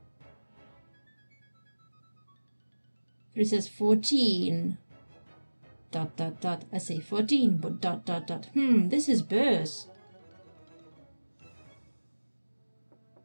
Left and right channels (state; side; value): inverted; both; correlation -1.00